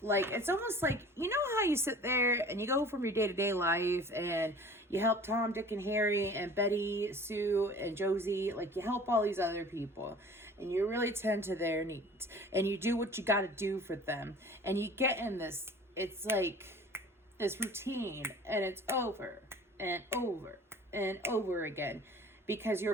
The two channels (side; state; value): both; normal; correlation 0.46